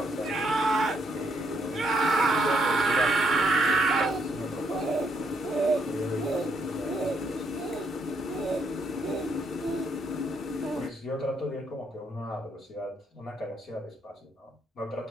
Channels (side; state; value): both; normal; correlation 0.73